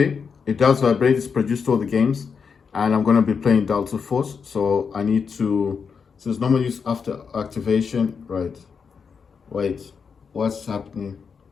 it does vibrate. It's produced all the games, and I'm gonna be playing Delta Force. So I need to. It says normal use after activation. Right. Wait, what's happening?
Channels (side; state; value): right; quieter; 6.0 dB